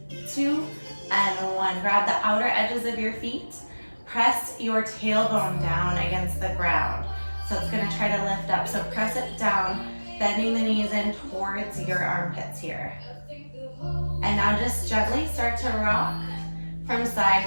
2, and 1. Grab the outer edges of your feet. Press your tailbone down against the ground. So it's gonna try to lift up. So press it down, bending the knees in towards your armpits here. And now just gently start to rock from side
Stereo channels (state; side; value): inverted; both; correlation -1.00